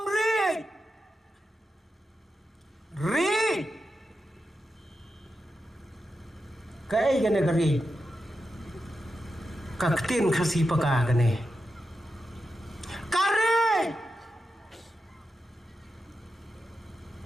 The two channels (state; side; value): normal; both; correlation 0.89